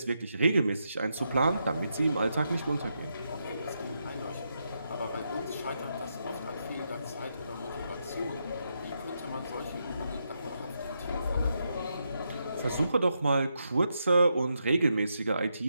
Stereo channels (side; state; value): both; inverted; correlation -0.82